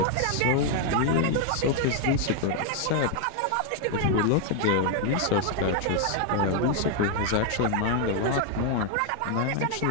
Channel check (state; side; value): different; both; correlation 0.00